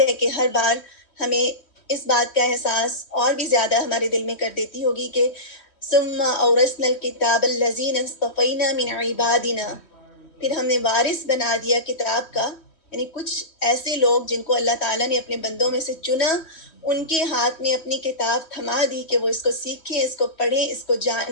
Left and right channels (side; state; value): right; late; 3.1 ms